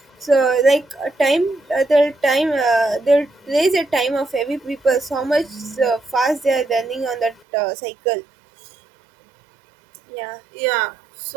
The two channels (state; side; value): drops out; left; at 7.4 s